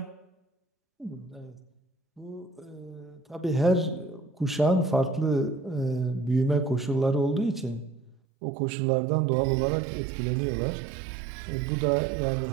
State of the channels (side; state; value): left; drops out; at 8.2 s